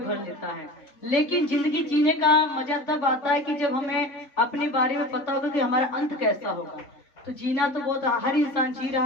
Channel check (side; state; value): right; late; 3.8 ms